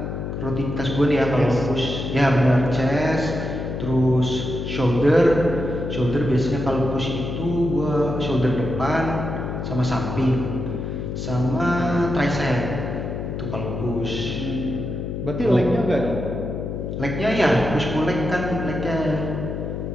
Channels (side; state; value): left; noise; hum, 5 dB below the sound